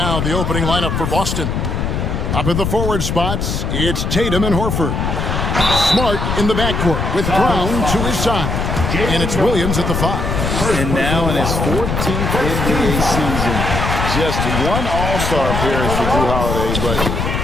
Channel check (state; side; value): noise; left; rumble, 1 dB below the sound